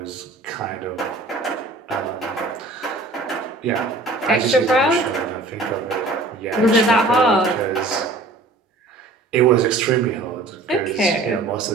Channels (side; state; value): left; quieter; 3.2 dB